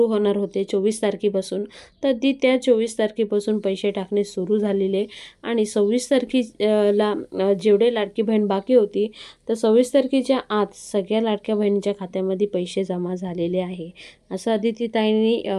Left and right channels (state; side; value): identical; both; correlation 1.00